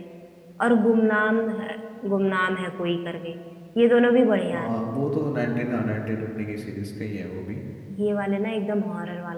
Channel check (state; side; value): identical; both; correlation 1.00